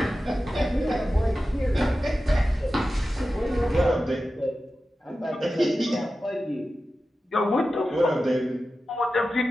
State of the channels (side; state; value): both; normal; correlation 0.93